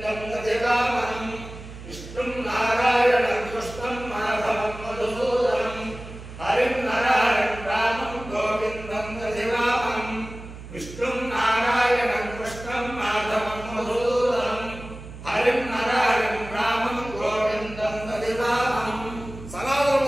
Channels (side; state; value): right; noise; hum, 14 dB below the sound